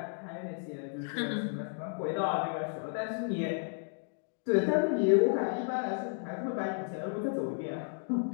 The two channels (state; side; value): silent; right; 56 dB below the other